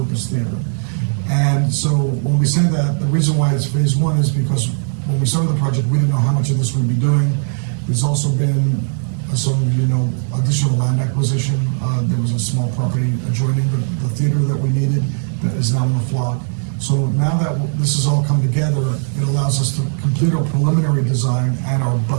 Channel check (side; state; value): left; silent; 68 dB below the other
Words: theater. And so when we say that, the reason why it's phase 1 is because when we started the project, we didn't know how much of this we'd be doing. There's also been, as some of you know, additional land acquisition. There was a small property adjoining the theater that we needed that is now in the flock. So now that this has all come together, it allows us to complete our preliminary design and our